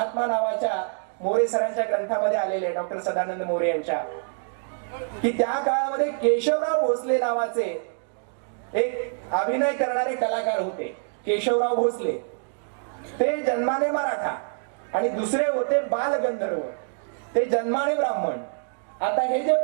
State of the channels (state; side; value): silent; left; digital silence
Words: नावाच्या मोरे सरांच्या ग्रंथामध्ये आलेले आहे, डॉक्टर सदानंद मोरे यांच्या, की त्या काळामध्ये केशवराव भोसले नावाचे एक अभिनय करणारे कलाकार होते. केशवराव भोसले ते जन्माने मराठा आणि दुसरे होते बालगंधर्व, ते जन्माने ब्राह्मण. आता हे जे